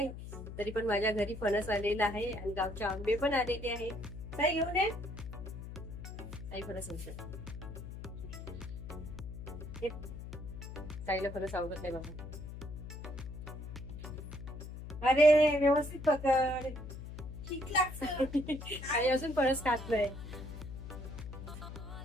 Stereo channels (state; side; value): noise; left; hum, 10 dB below the sound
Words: तरी पण माझ्या घरी फणस आलेला आहे आणि गावचे आंबे पण आलेले आहे. ताई घेऊन ये ताई फणस. ताईला फणस आवडत नाही बाबा. अरे व्यवस्थित पकड. ठीक लागतं. आणि अजून फणस खातलंय.